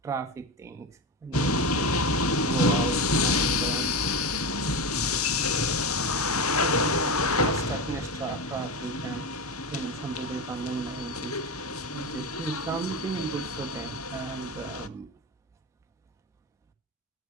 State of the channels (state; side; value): normal; both; correlation 0.20